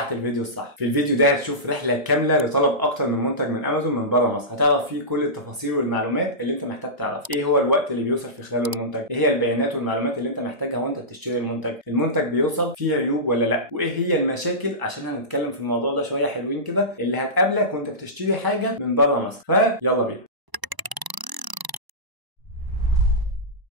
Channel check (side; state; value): left; late; 1.0 ms